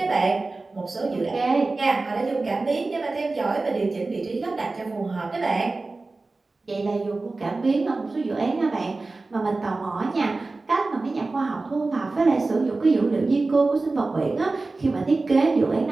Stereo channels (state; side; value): quieter; left; 3.5 dB